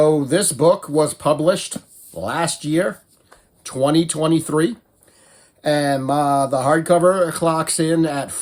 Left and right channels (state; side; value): identical; both; correlation 1.00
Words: this book was published last year, 2023. And the hardcover clocks in at